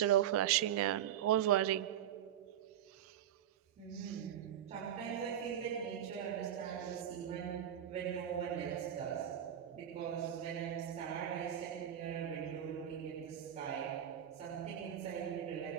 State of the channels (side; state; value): left; quieter; 10.4 dB